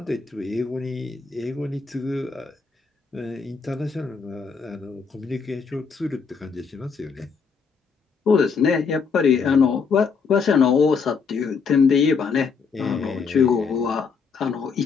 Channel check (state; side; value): quieter; right; 5.5 dB